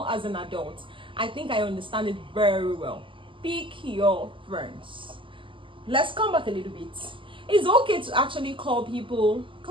as an adult, I think I understand it very well. Pick your friends. Let's come back a little bit. It's okay to actually call people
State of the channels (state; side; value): late; left; 0.25 ms